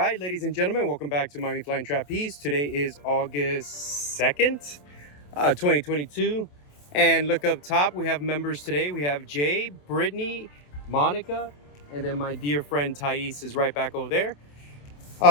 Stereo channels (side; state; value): right; late; 27 ms